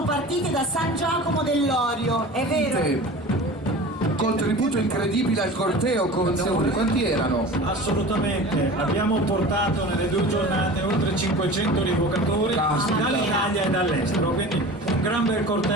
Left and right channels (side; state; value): both; normal; correlation 0.37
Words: partite da San Giacomo dell'Orio, è vero? Contributo incredibile al corteo con quanti erano? Assolutamente, abbiamo portato nelle 2 giornate oltre 500 rivocatori dall'Italia e dall'estero, quindi un gran bel